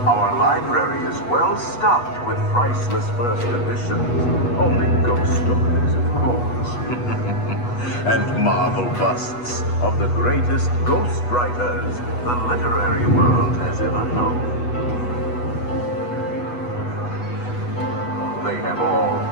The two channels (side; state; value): right; late; 8.2 ms